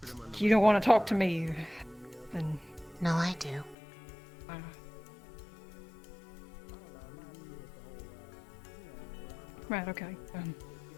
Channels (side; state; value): right; drops out; at 3.8 s